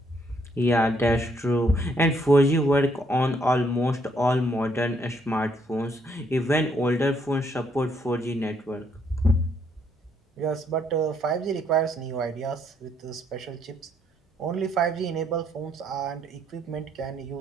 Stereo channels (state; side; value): normal; both; correlation 0.70